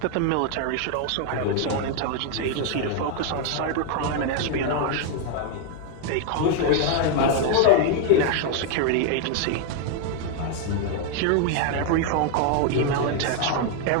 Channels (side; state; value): both; different; correlation 0.00